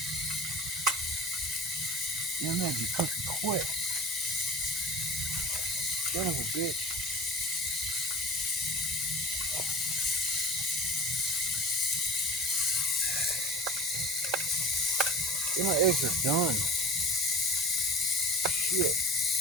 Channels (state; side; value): normal; both; correlation 0.38